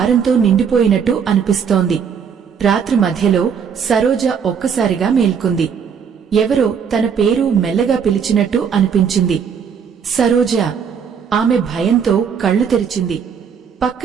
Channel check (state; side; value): quieter; left; 7.0 dB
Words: నిండిపోయినట్టు అనిపిస్తోంది. రాత్రి మధ్యలో సరోజ ఒక్కసారిగా మేల్కొంది. ఎవరో తన పేరు మెల్లగా పిలిచినట్టు అనిపించింది. సరోజ. ఆమె భయంతో కళ్ళు తెరిచింది.